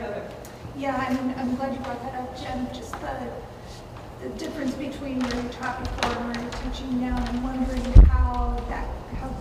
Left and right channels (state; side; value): identical; both; correlation 1.00